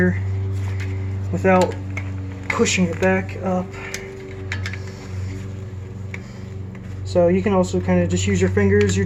without pushing it back up. So you can also kind of just use your fingers. You're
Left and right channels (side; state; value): both; identical; correlation 1.00